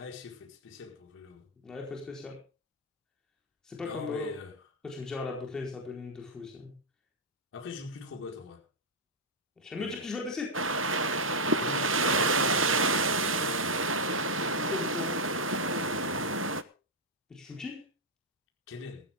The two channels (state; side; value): normal; both; correlation -0.02